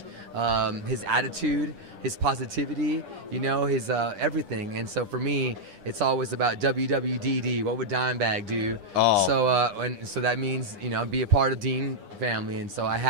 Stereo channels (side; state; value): left; late; 9.9 ms